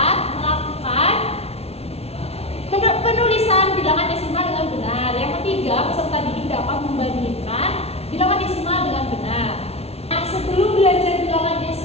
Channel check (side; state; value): right; late; 0.30 ms